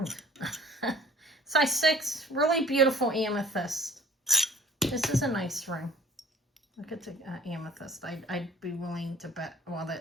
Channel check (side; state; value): both; normal; correlation 0.52